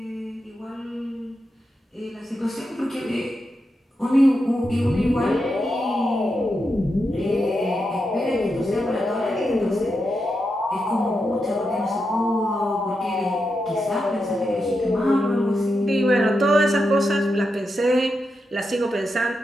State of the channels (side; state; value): both; normal; correlation 0.86